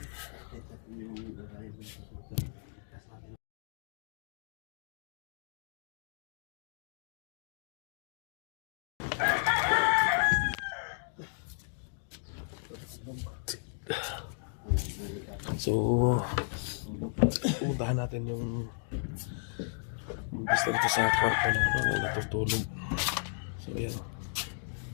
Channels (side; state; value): right; silent; digital silence